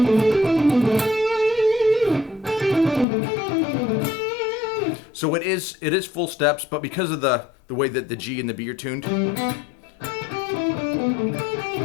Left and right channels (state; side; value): drops out; right; at 3.1 s